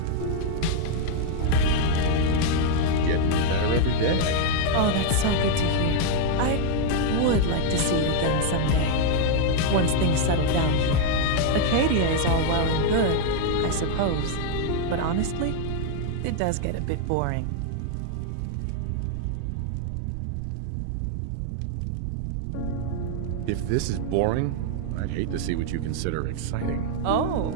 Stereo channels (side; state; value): both; different; correlation 0.00